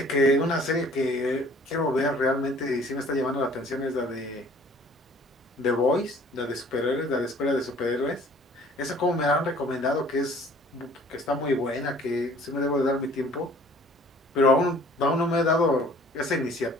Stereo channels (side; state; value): both; normal; correlation 0.53